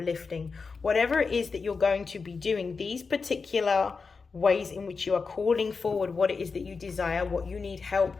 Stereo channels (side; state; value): right; quieter; 4.8 dB